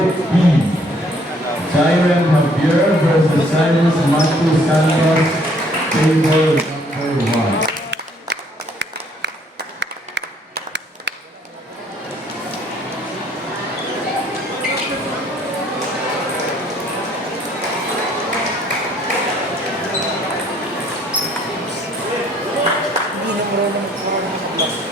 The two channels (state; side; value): normal; both; correlation 0.62